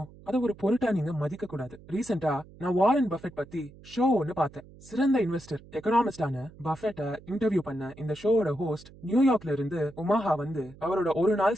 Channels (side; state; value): right; noise; hum, 21 dB below the sound